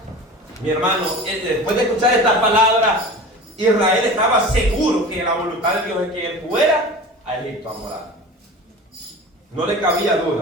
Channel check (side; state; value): both; normal; correlation 0.35